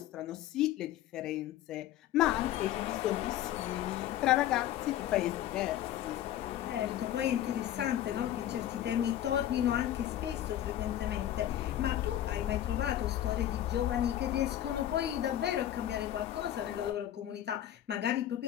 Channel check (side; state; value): right; quieter; 12.3 dB